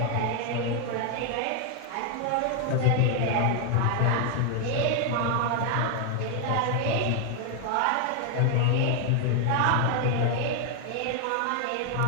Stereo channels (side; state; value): both; different; correlation 0.00